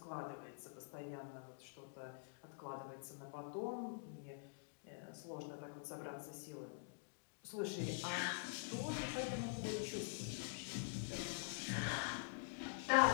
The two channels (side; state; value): right; silent; digital silence